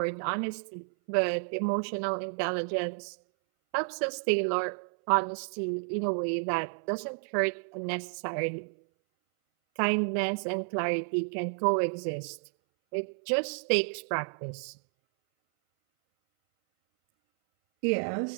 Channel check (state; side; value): silent; left; 57 dB below the other